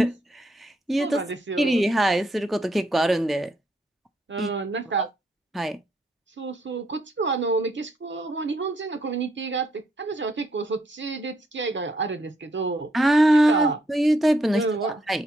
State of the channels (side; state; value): both; normal; correlation 0.74